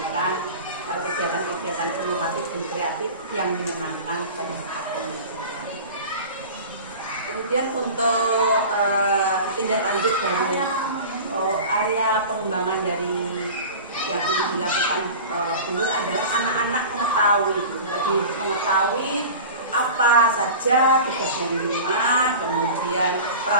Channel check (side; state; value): both; inverted; correlation -0.35